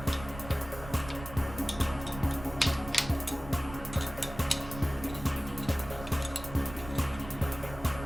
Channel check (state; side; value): noise; right; rumble, 13 dB below the sound